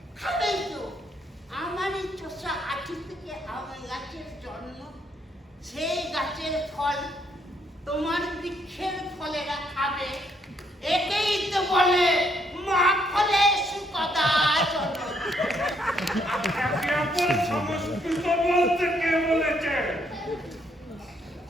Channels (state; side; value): normal; both; correlation 0.72